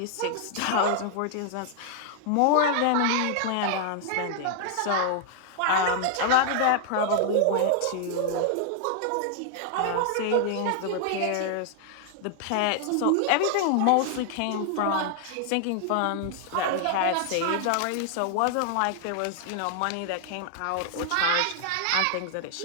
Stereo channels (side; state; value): both; different; correlation 0.00